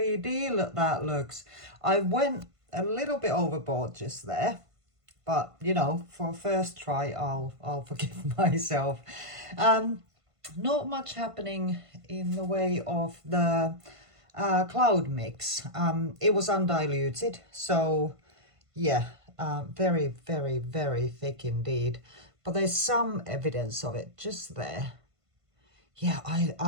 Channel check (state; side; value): late; left; 1.5 ms